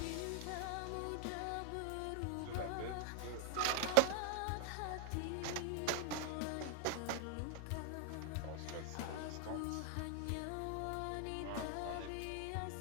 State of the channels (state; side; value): different; both; correlation 0.00